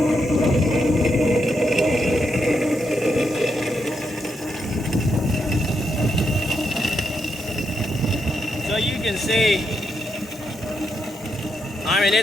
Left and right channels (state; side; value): normal; both; correlation 0.81